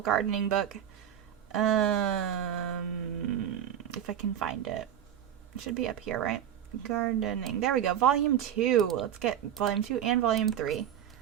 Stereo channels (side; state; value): left; quieter; 10.1 dB